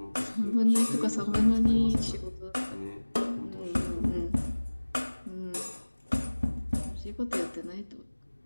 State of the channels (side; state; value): both; inverted; correlation -1.00